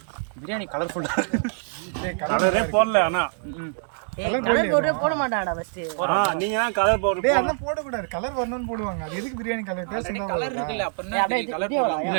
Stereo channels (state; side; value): silent; left; 62 dB below the other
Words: பிரியாணி கலர்ஃபுல்லா கலரே போடல ஆனா கலர் பவுடரே போட மாட்டான்டா ஃபர்ஸ்ட் நீங்க தான் கலர் பவுடர் டேய் அதெல்லாம் போட கூடாது கலர் வரணும்னு போடுவாங்க அது எதுக்கு பிரியாணி கலர் டேஸ்ட் இருந்தா